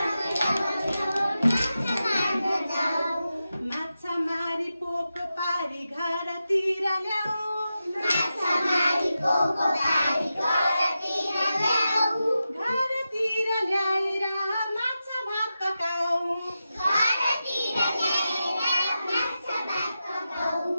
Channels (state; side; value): inverted; both; correlation -0.91